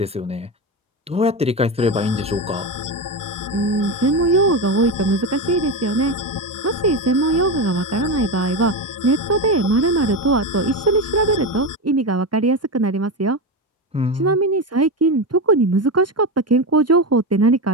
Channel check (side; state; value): both; normal; correlation 0.16